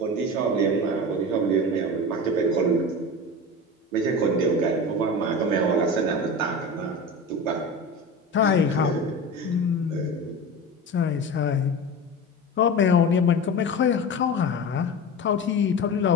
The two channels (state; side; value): normal; both; correlation 0.29